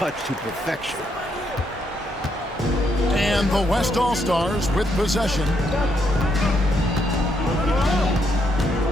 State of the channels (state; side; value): normal; both; correlation 0.76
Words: to perfection. And the West All-Stars with possession.